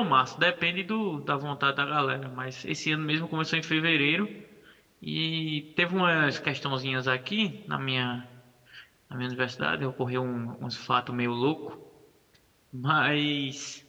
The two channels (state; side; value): identical; both; correlation 1.00